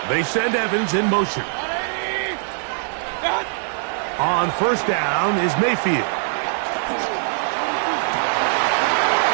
They send Evans in motion. On 1st down is Mayfield.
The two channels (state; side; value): silent; left; 60 dB below the other